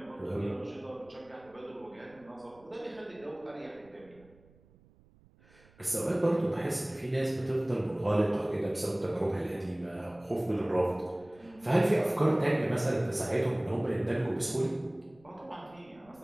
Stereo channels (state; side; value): noise; right; rumble, 28 dB below the sound